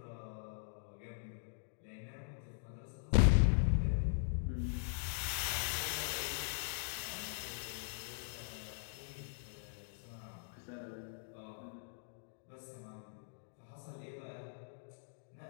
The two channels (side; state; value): right; silent; digital silence